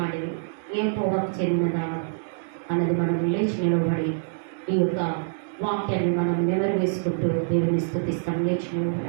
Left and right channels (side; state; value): left; silent; digital silence